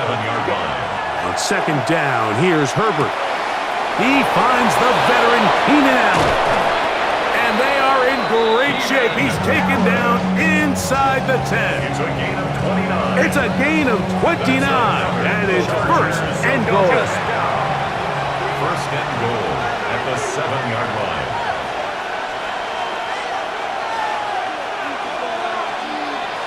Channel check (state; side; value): identical; both; correlation 1.00